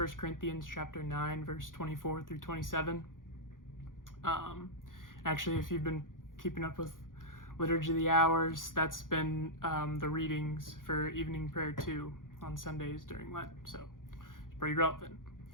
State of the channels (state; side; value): late; right; 0.89 ms